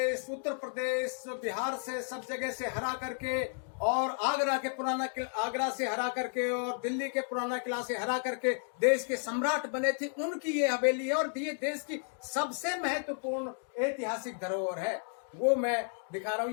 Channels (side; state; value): right; silent; 56 dB below the other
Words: उत्तर प्रदेश, बिहार से सब जगह से हरा करके और आगरा से हरा करके और दिल्ली के पुराना किला से हरा करके देश के सम्राट बने थे। उनकी ये हवेली है और ये देश की सबसे महत्वपूर्ण ऐतिहासिक धरोहर है। वो मैं दिखा रहा हूँ।